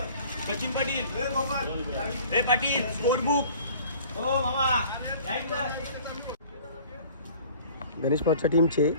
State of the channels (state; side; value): inverted; both; correlation -0.48